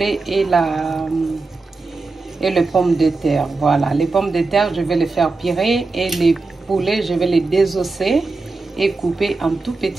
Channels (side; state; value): left; quieter; 3.7 dB